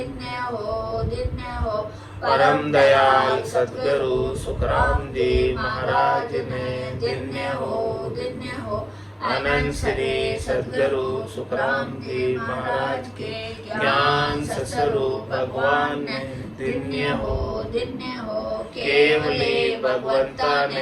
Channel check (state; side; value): identical; both; correlation 1.00